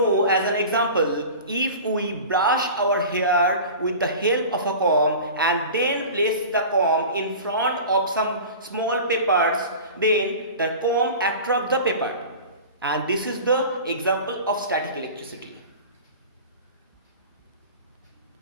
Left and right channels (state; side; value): inverted; both; correlation -0.36